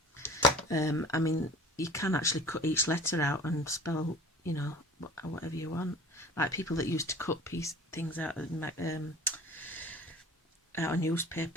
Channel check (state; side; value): normal; both; correlation 0.44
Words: I mean, you can actually cut each letter out and spell, you know, whatever you want. Like people that used to cut things out of